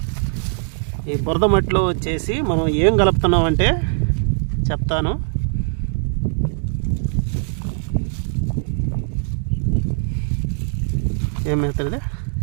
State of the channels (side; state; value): left; silent; digital silence